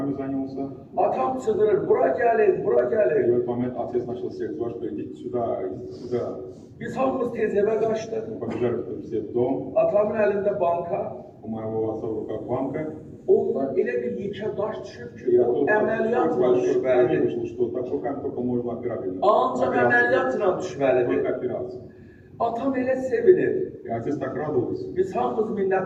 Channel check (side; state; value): both; identical; correlation 1.00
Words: занялся. Atam çığırır, bura gəlin, bura И в gəlin. этот момент отец начал всех звать, что идите сюда, идите сюда. Biz hamımız tez evə qaçdıq. Мы побежали все в дом. Atamın əlində banka. У моего отца в руках банка. Ondan elə bir yekə daş düşüb ki, И o оттуда əməliyyatla большой камень düşməlidir. вышел, что такой камень только можно операбельно. Ancaq əməliyyatla düşməlidir. Только операция. Atam elə sevinir. И отец так радовался. Biz hamımız